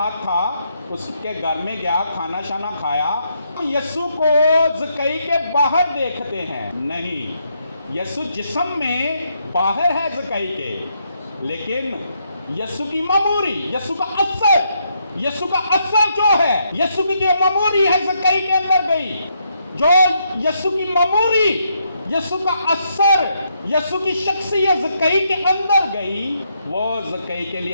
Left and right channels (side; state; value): both; inverted; correlation -0.77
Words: था, उसके घर में गया, खाना शाना खाया। यीशु को ज़क्कई के बाहर देखते हैं? नहीं, यीशु जिस्म में बाहर है ज़क्कई के, लेकिन यीशु की मामूरी, यीशु का असर जो है, यीशु की जो मामूरी है ज़क्कई के अंदर गई, जो यीशु की मामूरी, यीशु का असर, यीशु की शख्सियत ज़क्कई के अंदर गई, वो ज़क्कई के